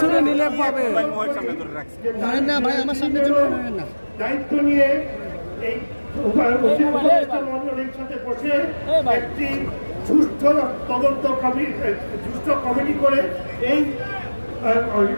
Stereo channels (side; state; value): both; inverted; correlation -1.00